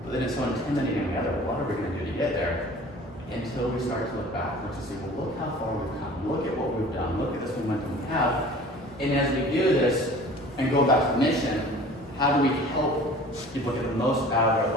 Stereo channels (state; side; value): normal; both; correlation 0.45